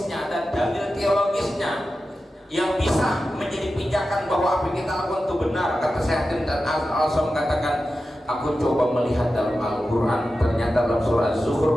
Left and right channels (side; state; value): both; normal; correlation 0.92